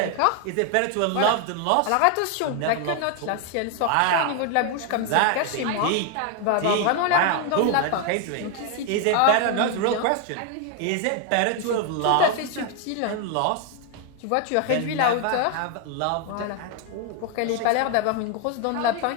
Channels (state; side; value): different; both; correlation 0.01